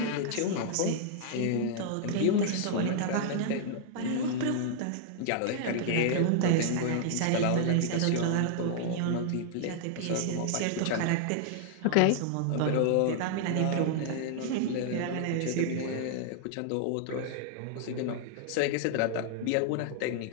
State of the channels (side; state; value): both; different; correlation -0.01